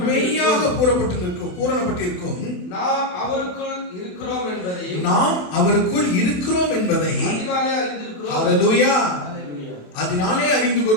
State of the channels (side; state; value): right; late; 27 ms